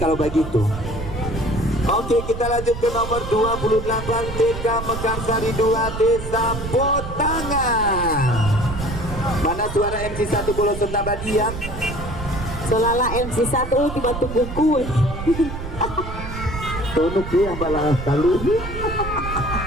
begitu. Oke, kita lanjut ke nomor 28 TK Mekarsari 2 Desa Potangan. Mana suara MC1 Bolo Sentabadian? Selala MC1 tiba tunggu kue. Tonuk yang balas taluh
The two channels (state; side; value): noise; right; rumble, 8 dB below the sound